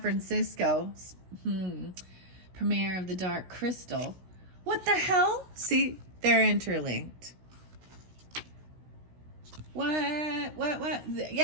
premiere of The Dark Crystal. What the hell? See, they're interlinked. What?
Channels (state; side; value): late; left; 16 ms